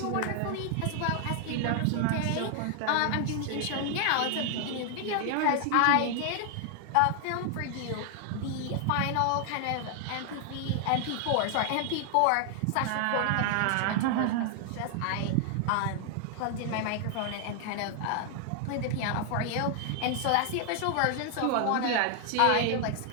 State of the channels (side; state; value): both; different; correlation 0.00